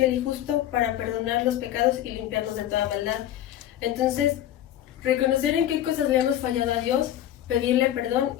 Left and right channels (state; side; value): quieter; right; 12.0 dB